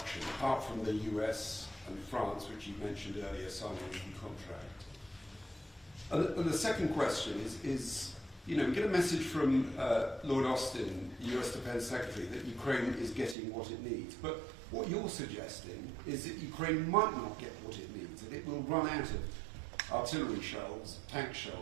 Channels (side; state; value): left; drops out; at 13.4 s